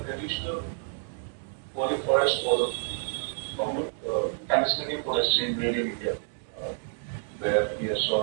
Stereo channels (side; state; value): left; silent; digital silence